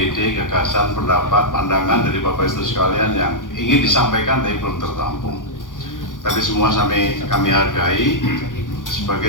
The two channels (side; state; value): right; late; 0.88 ms